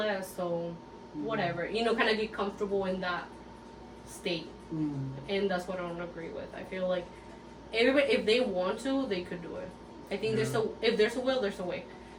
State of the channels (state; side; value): identical; both; correlation 1.00